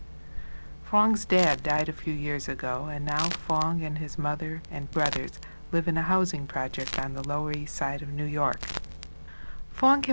Phong's dad died a few years ago, and now Phong and his mother and brothers live in a housing project on the Lower East Side of New York. Phong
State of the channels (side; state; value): both; inverted; correlation -1.00